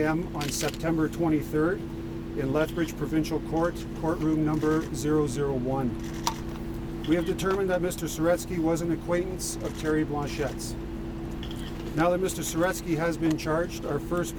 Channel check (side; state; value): both; identical; correlation 1.00